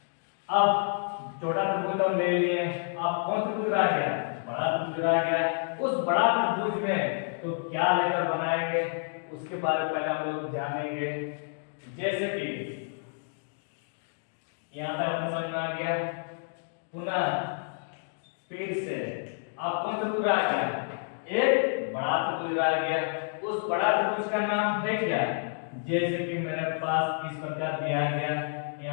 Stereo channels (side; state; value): right; silent; digital silence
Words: अब छोटा त्रिभुज हम ले लिए, अब कौन सा त्रिभुज रह गया, बड़ा त्रिभुज रह गया। उस बड़ा त्रिभुज में तो क्या लेकर बनाएंगे उसके बारे में पहले हम लोग जानेंगे। जैसे कि यहाँ तक अपने समझ में आ गया, पुनः फिर से अब कौन सा त्रिभुज आ गया, एक बड़ा त्रिभुज आ गया। उस बड़ा त्रिभुज का नाम है क्या, जैसे कि मेरे पास इस प्रकार दिया गया,